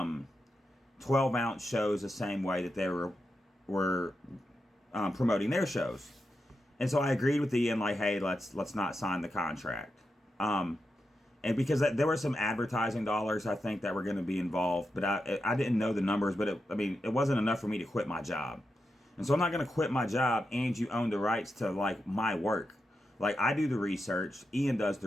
ounce shows the same way that they were promoting their shows. And so I agreed with Ian, like, hey, let's not sign the contract. And because there were some advertising dollars, I think, that were going to be involved, but I didn't know the numbers, but it wasn't enough for me to quit my job. And so I'm not going to quit my job and you own the rights to, like, my work. Like, I do the research, Ian does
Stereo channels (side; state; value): both; normal; correlation 0.88